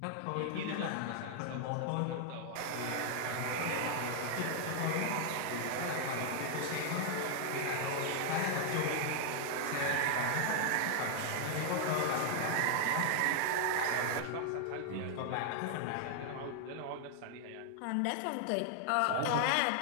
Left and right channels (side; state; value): both; different; correlation 0.00